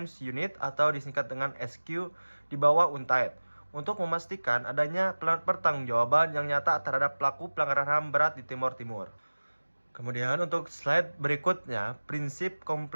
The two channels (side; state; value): both; inverted; correlation -1.00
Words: Unit atau disingkat dengan SQ di bawah UNTAD untuk memastikan adanya pertanggungjawaban yang nyata terhadap pelaku pelanggaran HAM berat di Timor Timur. Kemudian untuk slide berikutnya, prinsip